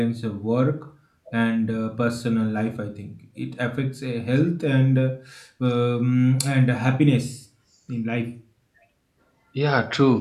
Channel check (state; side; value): identical; both; correlation 1.00